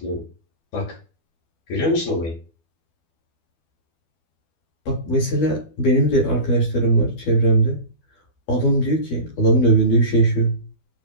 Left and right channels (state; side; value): late; right; 12 ms